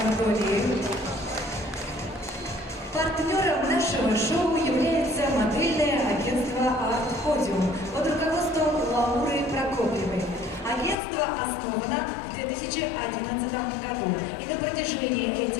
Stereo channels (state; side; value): drops out; right; at 11.0 s